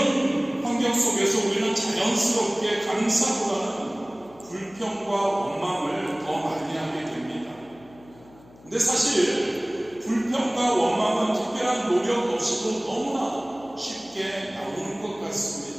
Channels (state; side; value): noise; left; hum, 25 dB below the sound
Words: 환경 속에서 우리는 자연스럽게 감사보다는 불평과 원망을 더 많이 하게 됩니다. 근데 사실 불평과 원망은 특별한 노력 없이도 너무나 쉽게 나오는 것